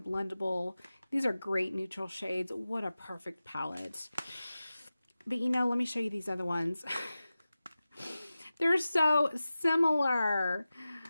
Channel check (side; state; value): both; inverted; correlation -0.95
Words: These are great neutral shades. What a perfect palette. But you know, let me show you these other ones. They're so similar.